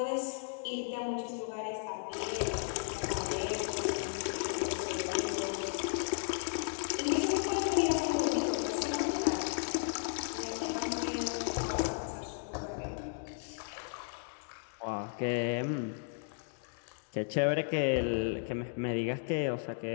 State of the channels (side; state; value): right; silent; digital silence